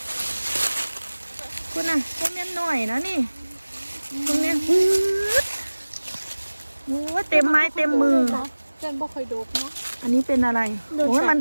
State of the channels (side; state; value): both; inverted; correlation -1.00